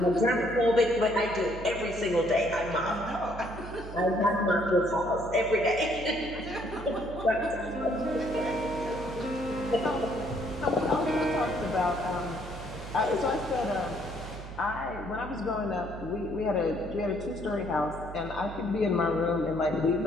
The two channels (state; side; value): noise; right; hum, 11 dB below the sound